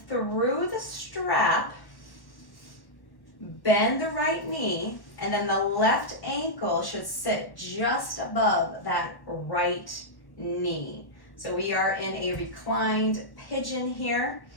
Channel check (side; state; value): right; late; 1.1 ms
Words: through the strap, bend the right knee, and then the left ankle should sit just above that right knee. So we are in a reclined pigeon here,